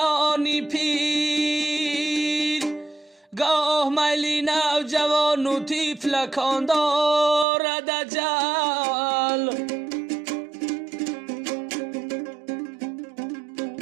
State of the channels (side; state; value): left; drops out; at 7.5 s